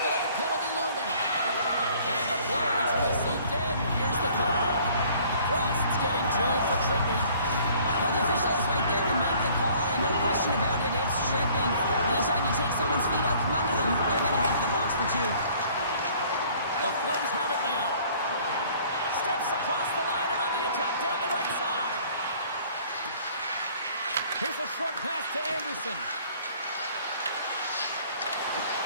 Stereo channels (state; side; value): inverted; both; correlation -0.55